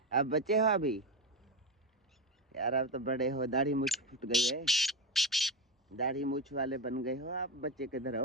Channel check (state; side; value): normal; both; correlation 0.14